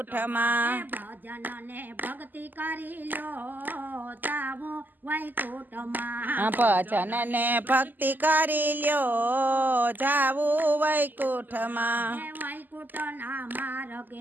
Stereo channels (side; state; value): left; late; 0.087 ms